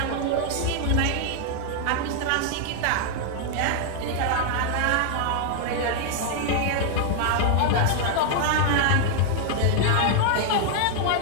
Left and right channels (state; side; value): different; both; correlation 0.00